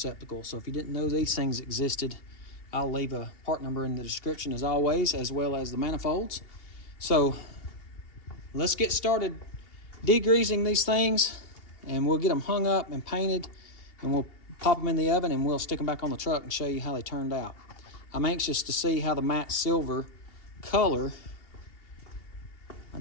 So if you didn't know these things existed, I'll leave a part number in the description as always, as well as the manifolds. So let's get started degreasing these things, and we'll get them hung up and painted, and we'll pop them in the oven, and we'll stick them back on the truck and show you how they turned out. I'm anxious to see how the matte silver color, I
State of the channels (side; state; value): right; late; 2.8 ms